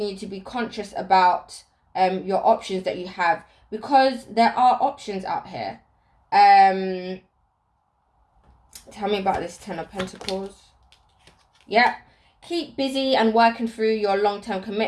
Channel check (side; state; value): both; identical; correlation 1.00